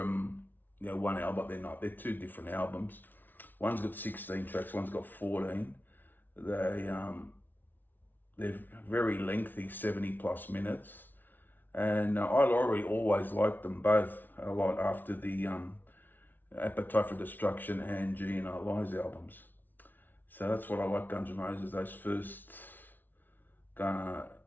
one album, but they're not. They're two different albums. One's got 16 tracks, one's got 14. They're very lengthy, 70 plus minutes. And I always liked them both a lot after the Appetite for Destruction and GNR Lies albums. So that's what I like Guns N' Roses, those first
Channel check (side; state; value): right; late; 0.089 ms